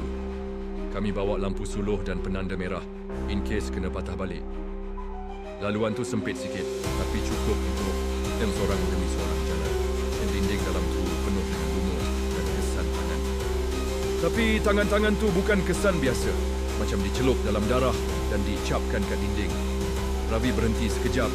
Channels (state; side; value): identical; both; correlation 1.00